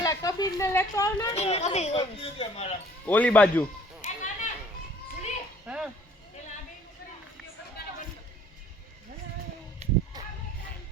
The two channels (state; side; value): normal; both; correlation 0.56